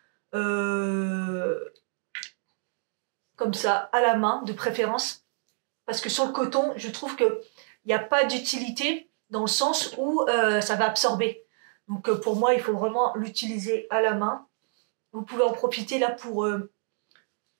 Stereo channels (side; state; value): left; silent; 59 dB below the other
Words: comme ça à la main de préférence, parce que sur le coton, je trouve que il n'y a pas d'utilité dans le sens où ça va absorber. Donc pour moi, il faut vraiment l'utiliser à la main. Vous pouvez en profiter là pour